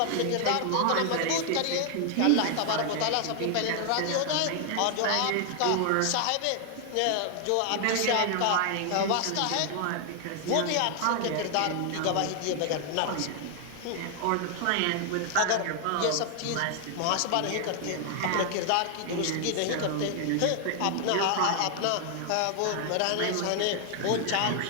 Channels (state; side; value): different; both; correlation 0.00